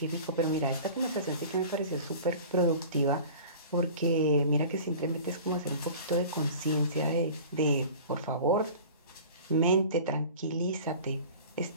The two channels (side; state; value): both; inverted; correlation -0.40